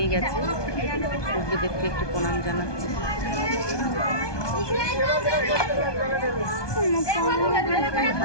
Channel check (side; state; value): right; late; 1.2 ms